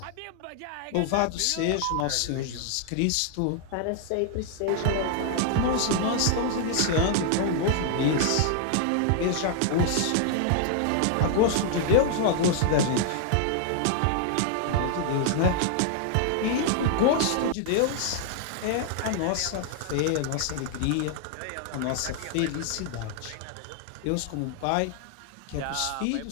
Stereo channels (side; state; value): both; different; correlation 0.00